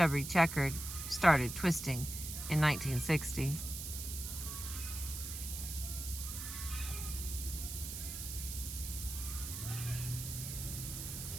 Checker started twisting in 1960.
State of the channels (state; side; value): noise; right; hiss, 7 dB below the sound